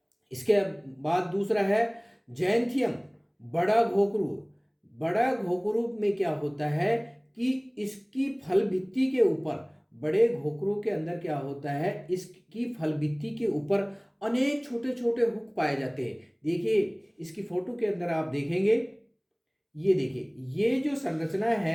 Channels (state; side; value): identical; both; correlation 1.00